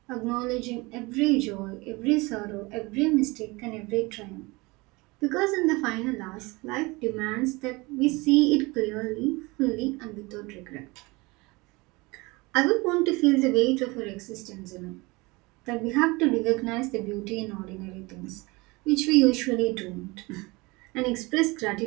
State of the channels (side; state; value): left; quieter; 24.3 dB